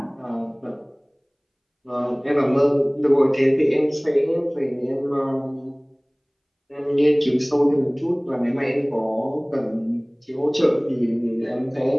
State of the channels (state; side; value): identical; both; correlation 1.00